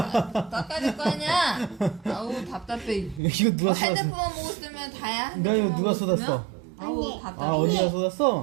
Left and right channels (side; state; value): left; drops out; at 3.2 s